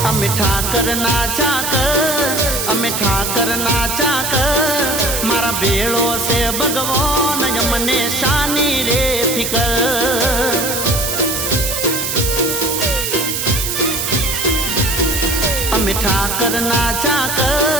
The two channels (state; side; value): noise; right; hiss, 2 dB below the sound